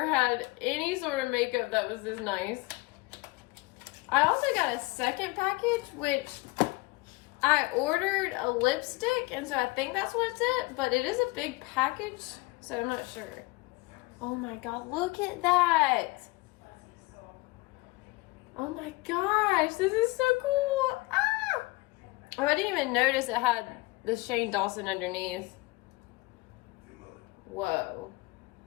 had any sort of makeup that was this nice. I also got a second package, which I ordered a lipstick, and so I think that's what's it, but it is a big package, so I'm not sure. Oh my God, look at that. Oh my gosh, this is so cool. Ah! Oh, I didn't even notice it had the Shane Dawson underneath. Whoa.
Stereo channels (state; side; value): quieter; right; 23.4 dB